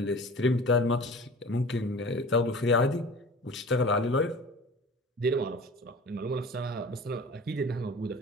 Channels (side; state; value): both; normal; correlation 0.40